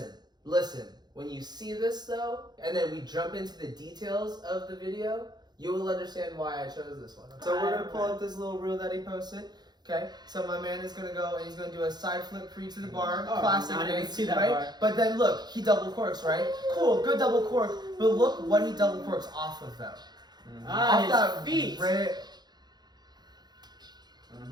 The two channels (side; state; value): left; late; 0.20 ms